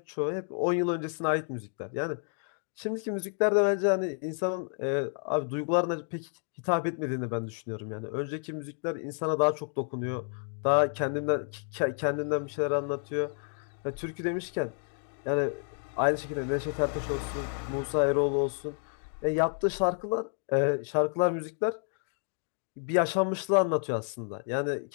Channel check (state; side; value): silent; right; 58 dB below the other